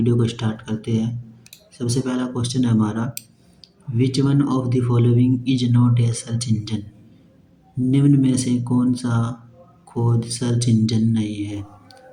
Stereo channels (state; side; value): identical; both; correlation 1.00